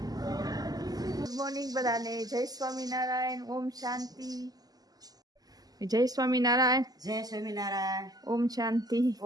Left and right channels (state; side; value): late; left; 0.18 ms